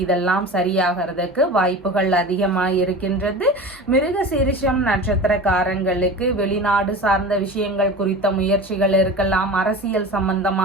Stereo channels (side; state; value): both; normal; correlation 0.33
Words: இதெல்லாம் சரியாகிறதுக்கு வாய்ப்புகள் அதிகமாக இருக்கின்றது. மிருகசீரிஷம் நட்சத்திரக்காரங்களுக்கு வெளிநாடு சார்ந்த விஷயங்கள் குறித்த முயற்சிகள் இருக்கலாம். அரசியல்